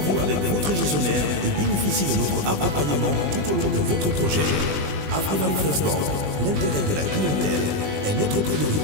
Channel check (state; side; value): late; left; 20 ms